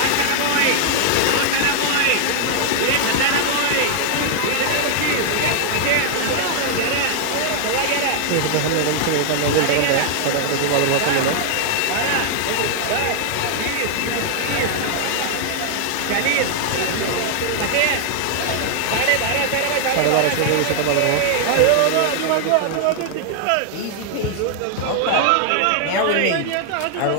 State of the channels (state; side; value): different; both; correlation 0.00